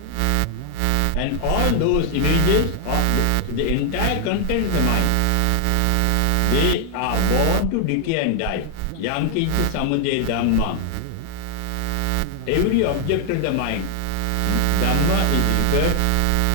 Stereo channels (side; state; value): both; different; correlation 0.00